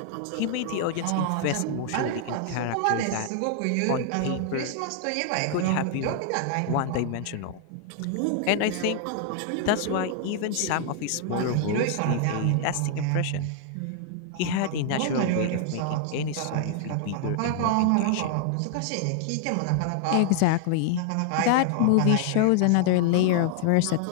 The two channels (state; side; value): different; both; correlation 0.00